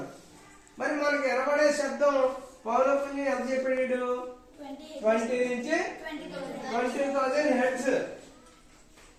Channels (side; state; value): both; identical; correlation 1.00